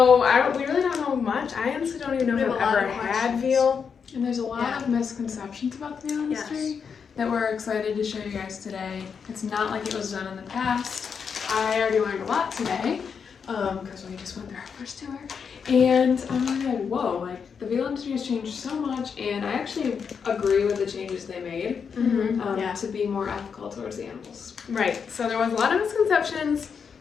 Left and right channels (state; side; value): quieter; right; 6.4 dB